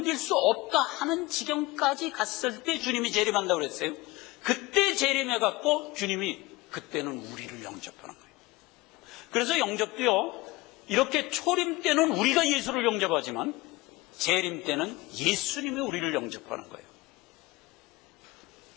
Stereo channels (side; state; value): right; quieter; 21.4 dB